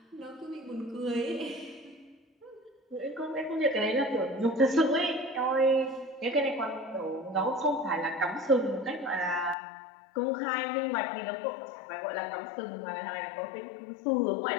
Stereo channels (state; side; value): drops out; right; at 9.6 s